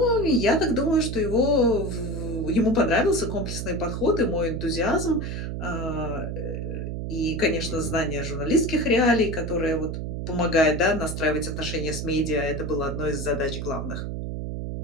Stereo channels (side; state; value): right; noise; hum, 4 dB below the sound